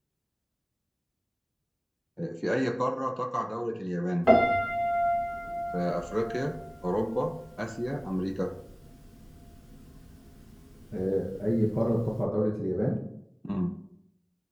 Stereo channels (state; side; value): identical; both; correlation 1.00